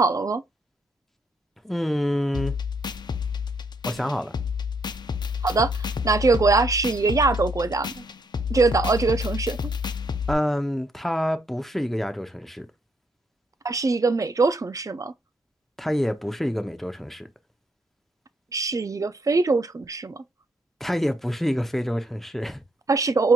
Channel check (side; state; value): both; normal; correlation 0.73